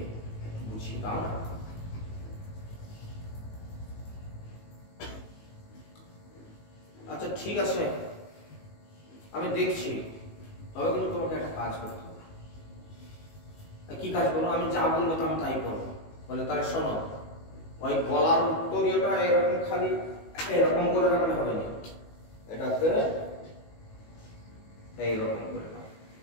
একটু বুঝিয়ে দাও না। আচ্ছা ঠিক আছে, আমি দেখছি, তবে কিন্তু তোমাকে একটা কাজ করতে হবে। কি কাজ করবো? আমি যা বলবো তো আমি তাই করবো। বলে তাহলে শোনো, ওই গলার উত্তরীয়টা এরকম খালি এরকম করে রাখলে হবে না, এটাকে এইরকম করে রাখ।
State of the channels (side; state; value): right; late; 19 ms